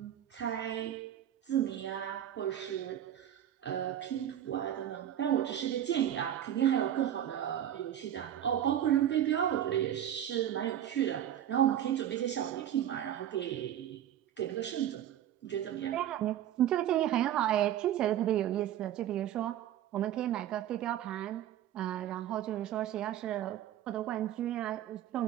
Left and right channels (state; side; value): quieter; left; 11.0 dB